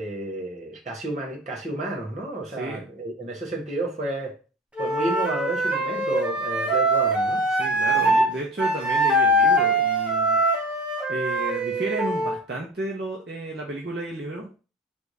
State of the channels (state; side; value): normal; both; correlation 0.35